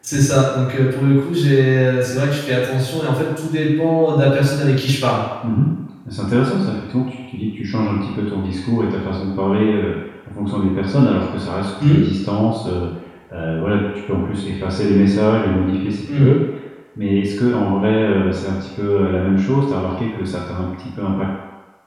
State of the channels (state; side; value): identical; both; correlation 1.00